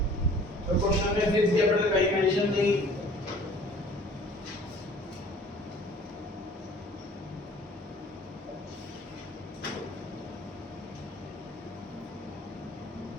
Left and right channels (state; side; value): normal; both; correlation 0.51